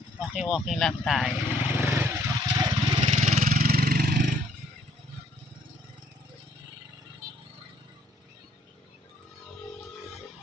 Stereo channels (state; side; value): normal; both; correlation 0.66